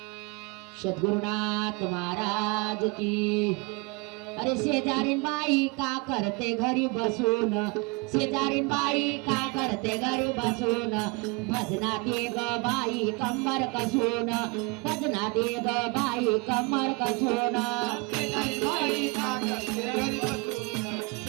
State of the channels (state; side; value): quieter; left; 27.8 dB